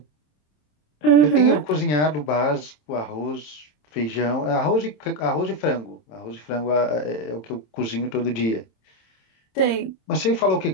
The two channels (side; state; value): right; late; 27 ms